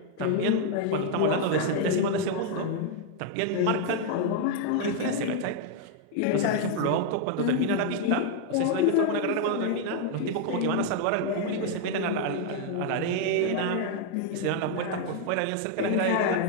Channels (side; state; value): both; different; correlation 0.00